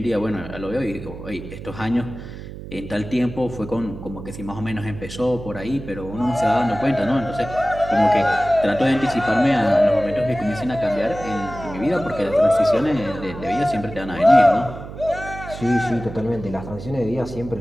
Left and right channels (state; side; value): noise; right; hum, 12 dB below the sound